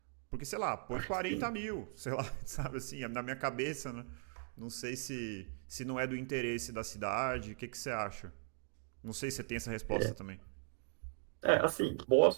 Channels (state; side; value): silent; left; digital silence